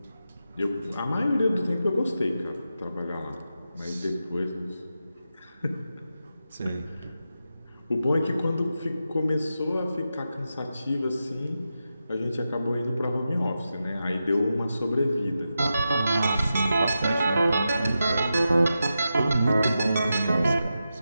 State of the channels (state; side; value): inverted; both; correlation -0.89